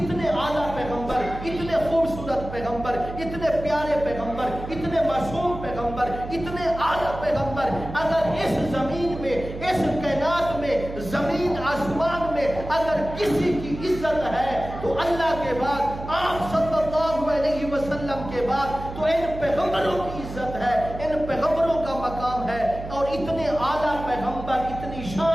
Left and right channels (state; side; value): noise; right; hum, 10 dB below the sound